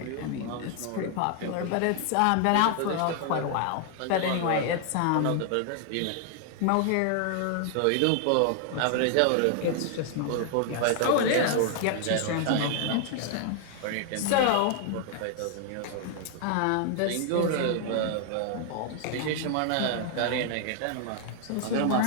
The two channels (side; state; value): both; different; correlation 0.00